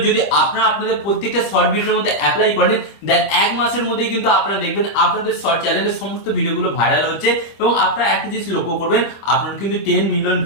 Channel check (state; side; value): late; right; 25 ms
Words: যদি আপনারা আপনাদের প্রত্যেকটা শর্ট ভিডিওর মধ্যে অ্যাপ্লাই করেন, দেন এক মাসের মধ্যেই কিন্তু আপনারা দেখবেন আপনাদের শর্ট চ্যানেলের সমস্ত ভিডিওগুলো ভাইরাল হচ্ছে এবং আপনারা একটা জিনিস লক্ষ্য করবেন, আপনারা কিন্তু 10 মিলিয়ন